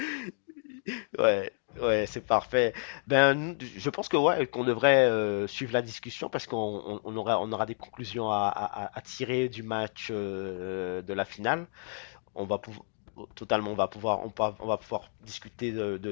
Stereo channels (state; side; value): silent; right; 58 dB below the other